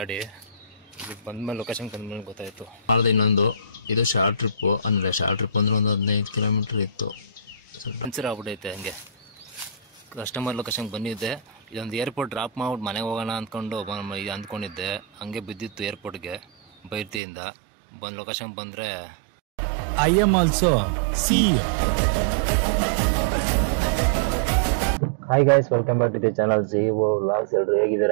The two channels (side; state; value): left; drops out; at 17.2 s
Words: ಬಂದ್ಮೇಲೆ ಲೊಕೇಶನ್ ಬಂದ್ಮೇಲೆ ಗೊತ್ತಾಯ್ತು. ಮಾಡಿದೆ ಇನ್ನೊಂದು ಇದು ಶಾರ್ಟ್ ಟ್ರಿಪ್ ಅಂದ್ರೆ ಒಂದು 15 ಕಿಲೋಮೀಟರ್ ಇತ್ತು. ಪಂಚರ್ ಆಗ್ಬಿಟ್ಟೈತೆ. ಹಂಗೆ ಕಸ್ಟಮರ್ ಲೊಕೇಶನ್ ಬಂದಿದ್ದೆ. ಇದೊಂದು ಏರ್ಪೋರ್ಟ್ ಡ್ರಾಪ್ ಮಾಡ್ಬಿಟ್ಟು ಮನೆಗೆ ಹೋಗೋಣ ಅಂದ್ಕೊಂಡು ಅಂದ್ಕೊಂಡಿದ್ದೆ. ಹಂಗೆ ಬಿದ್ದಿತ್ತು ಏರ್ಪೋರ್ಟ್ಗೆ ಬೈರ್ತಿಯಿಂದ. ಬಂದು ಲೊಕೇಶನ್ ಬಂದರೆ I am also CEO. Hi guys, welcome back to the channel CEO vlogs. ಎಲ್ಲರೂ